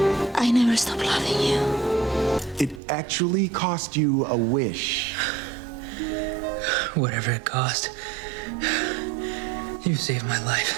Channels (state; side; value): drops out; left; at 2.8 s